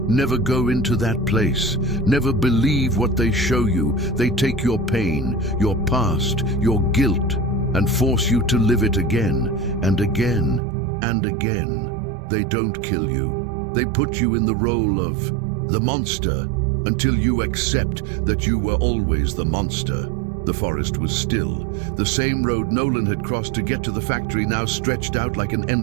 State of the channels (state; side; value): drops out; left; at 10.6 s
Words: never go into that place. Never believe what they show you. They take your pain, your past, your guilt, and force you to live it again and again and again. They don't kill you. They put you in the role of the monster until you accept that you were always the monster. The forest was still. The same road Nolan had crossed to get to the factory now stretched out like an